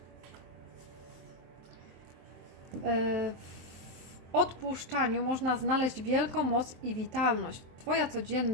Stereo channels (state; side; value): late; left; 23 ms